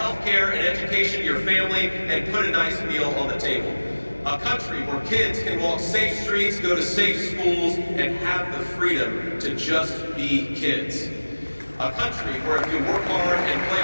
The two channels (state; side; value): inverted; both; correlation -1.00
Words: care and education to your family, and put a nice meal on the table. A country where kids can walk safe streets, go to safe schools, and have the freedom to just be kids. A country where if you work hard and play